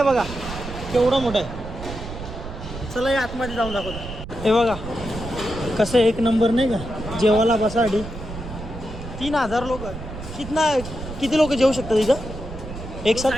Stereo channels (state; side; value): noise; right; rumble, 10 dB below the sound